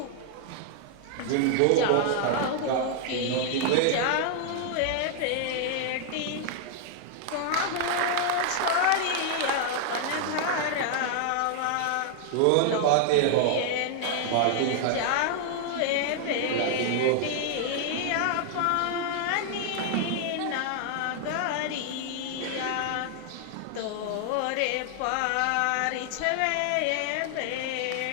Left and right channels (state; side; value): different; both; correlation 0.00